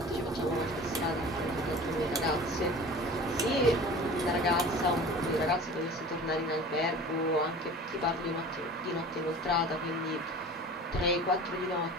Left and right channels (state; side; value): normal; both; correlation 0.40